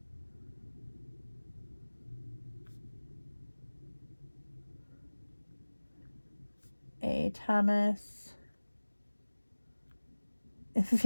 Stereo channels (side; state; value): both; inverted; correlation -1.00